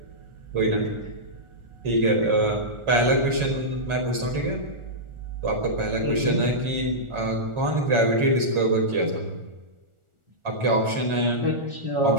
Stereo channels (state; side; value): late; left; 1.4 ms